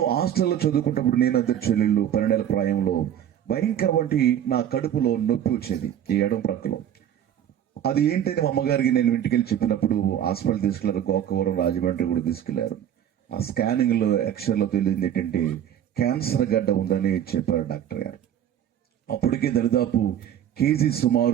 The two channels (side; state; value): left; quieter; 10.1 dB